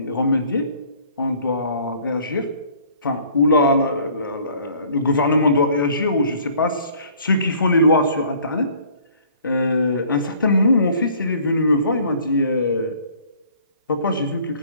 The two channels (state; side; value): inverted; both; correlation -0.56